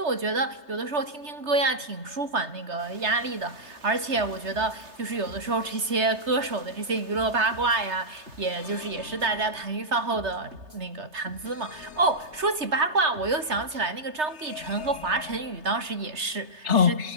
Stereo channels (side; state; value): left; late; 3.3 ms